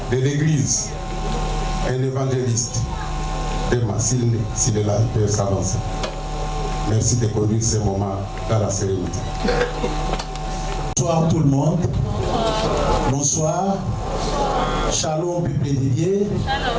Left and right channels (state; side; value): identical; both; correlation 1.00